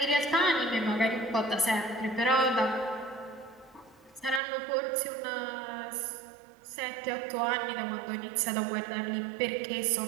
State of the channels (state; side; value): drops out; left; at 4.4 s